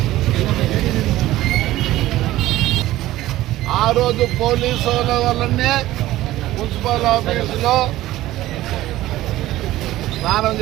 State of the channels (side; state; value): left; quieter; 15.8 dB